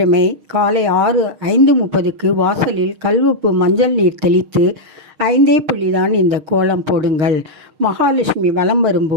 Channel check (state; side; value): late; left; 6.5 ms